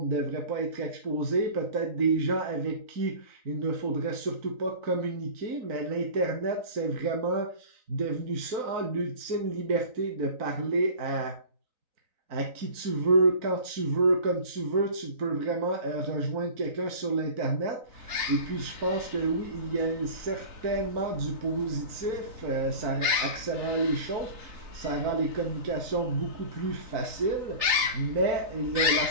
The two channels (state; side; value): late; left; 3.9 ms